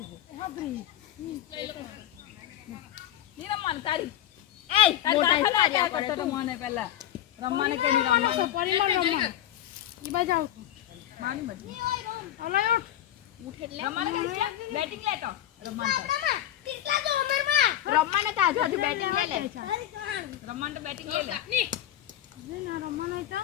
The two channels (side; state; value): right; quieter; 12.2 dB